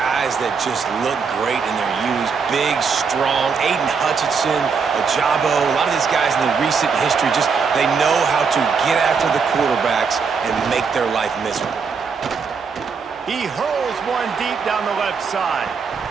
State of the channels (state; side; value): quieter; left; 5.5 dB